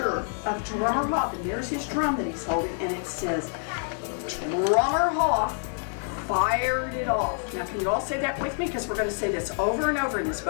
of Drummer Hoff. And here's his drum that he's holding. And it says, Drummer Hoff fired it off. Now, can you all say that with me? Because we're going to say this over and over in this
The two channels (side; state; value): right; silent; 60 dB below the other